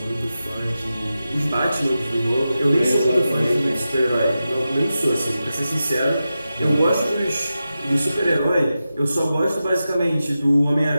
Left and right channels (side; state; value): both; inverted; correlation -0.91